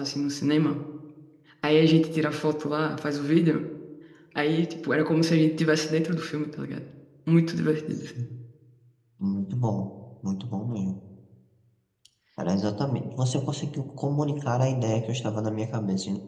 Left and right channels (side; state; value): both; identical; correlation 1.00